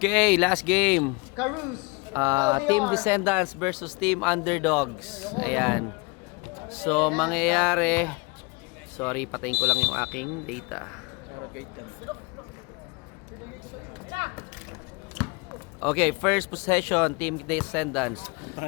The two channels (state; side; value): quieter; right; 28.9 dB